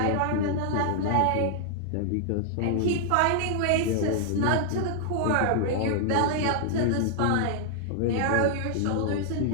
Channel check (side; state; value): both; different; correlation 0.00